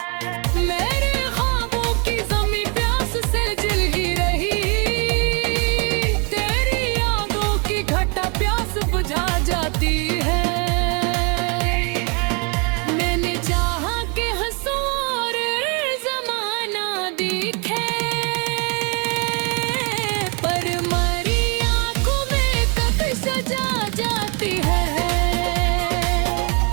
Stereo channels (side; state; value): left; quieter; 33.3 dB